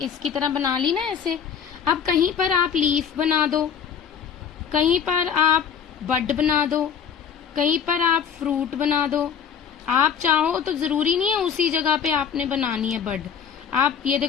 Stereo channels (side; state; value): right; quieter; 7.7 dB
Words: तरह बना ली ना ऐसे। अब कहीं पर आप लीफ बना दो, कहीं पर आप बड बना दो, कहीं पर आप फ्रूट बना दो। आप चाहो तो जरूरी नहीं है उसी जगह पे आपने बनानी है बड। आप ये